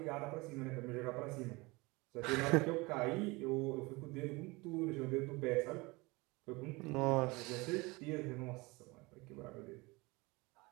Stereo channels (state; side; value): quieter; left; 24.2 dB